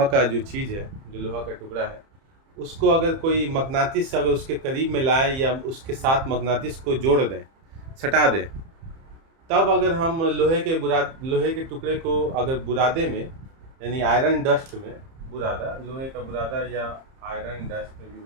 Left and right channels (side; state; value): left; late; 30 ms